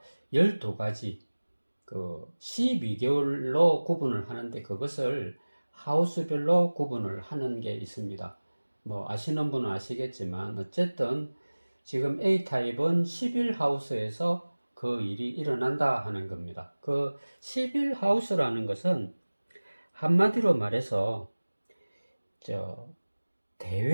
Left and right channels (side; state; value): both; inverted; correlation -1.00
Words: 12가지 12개월로 구분을 하는데 그것을 하우스별로 구분을 하는 게 있습니다. 뭐 아시는 분은 아시겠지만 어쨌든 지금 A타입은 11하우스에서 그 일이 일어난다 하는 겁니다. 그 11하우스라는 것은 한마디로 말해서